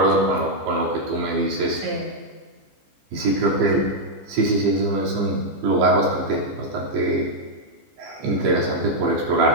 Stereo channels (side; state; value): left; late; 15 ms